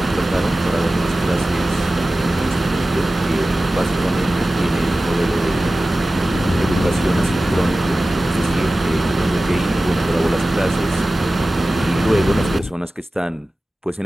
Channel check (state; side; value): normal; both; correlation 0.96